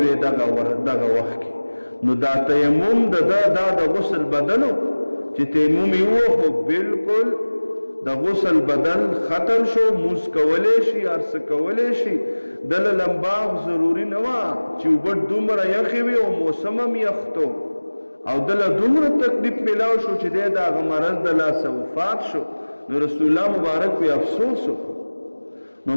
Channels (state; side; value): inverted; both; correlation -1.00